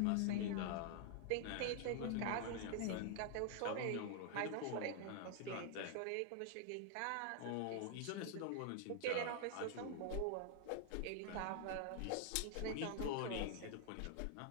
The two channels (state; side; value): different; both; correlation 0.00